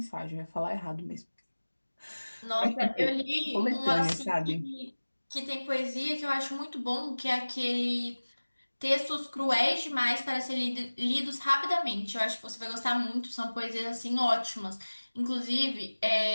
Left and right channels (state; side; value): inverted; both; correlation -1.00